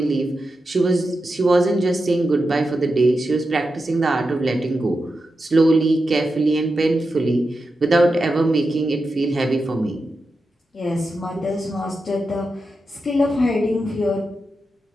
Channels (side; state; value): both; normal; correlation 0.89